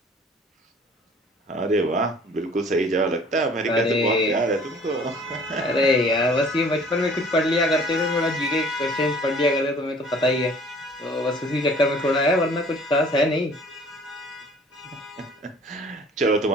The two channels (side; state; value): both; normal; correlation 0.52